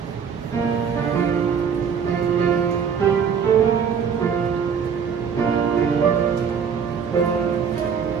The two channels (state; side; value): quieter; left; 6.9 dB